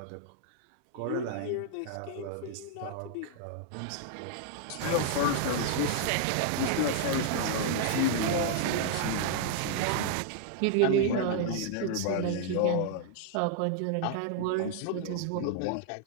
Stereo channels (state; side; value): different; both; correlation -0.01